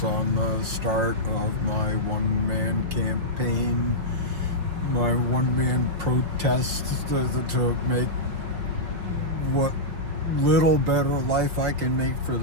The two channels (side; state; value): left; late; 5.8 ms